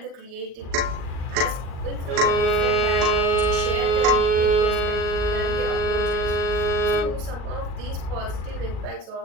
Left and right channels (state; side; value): late; left; 38 ms